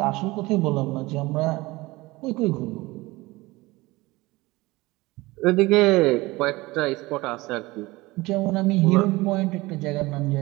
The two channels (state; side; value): quieter; left; 21.1 dB